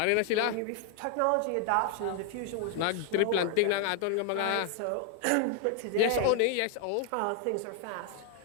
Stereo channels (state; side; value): different; both; correlation 0.00